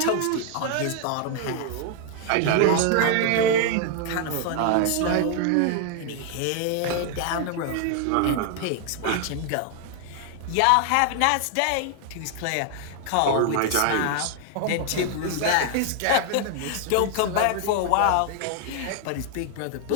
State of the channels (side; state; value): both; different; correlation 0.00